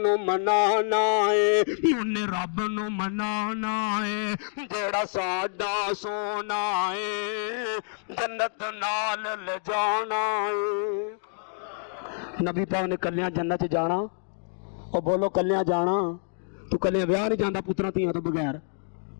ਮਨਾਣਾ ਏ, ਉਹਨੇ ਰੱਬ ਨੂੰ ਮਨਾਣਾ ਏ, ਜਿਹੜਾ ਸਾਡਾ ਸੋਨਾ ਏ ਜੰਨਤ ਨਾਲ ਲਿਜਾਣਾ ਏ। ਨਬੀ ਪਾਕ ਨੇ ਕੱਲਿਆਂ ਜੰਨਤ 'ਚ ਜਾਣਾ। ਉਹ ਬੋਲੋ ਕੱਲਿਆਂ ਜਾਣਾ। ਤੂੰ ਕੱਲਿਆਂ ਵਿਆਹ ਨਹੀਂ ਜਾਂਦਾ ਪੁੱਤਰਾਂ ਧੀਆਂ ਤੋਂ ਬਗੈਰ।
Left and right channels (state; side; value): silent; right; digital silence